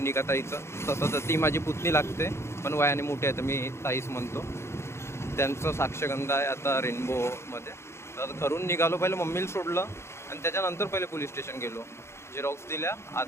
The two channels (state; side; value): late; right; 0.13 ms